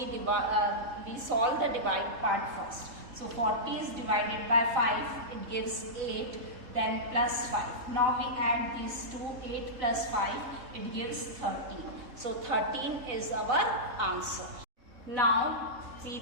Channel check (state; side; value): late; left; 4.0 ms